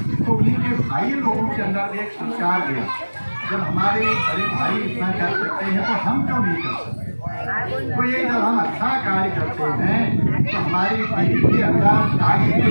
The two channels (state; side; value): inverted; both; correlation -1.00